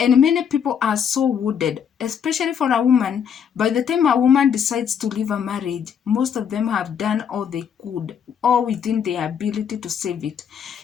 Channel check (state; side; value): quieter; right; 7.8 dB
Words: many people are so wounded, especially for a woman. By the time a woman decides to leave a marriage, most of them have done all they could, all within their ability to save it.